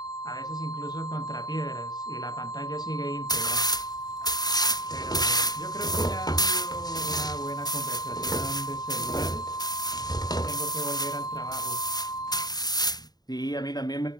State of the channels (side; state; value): right; late; 0.19 ms